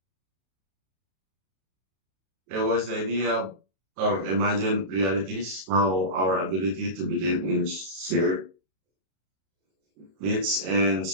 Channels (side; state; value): left; late; 32 ms